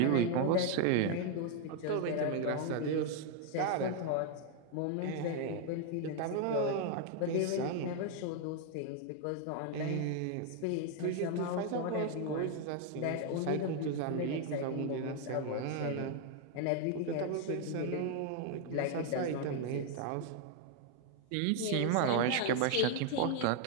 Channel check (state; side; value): different; both; correlation 0.00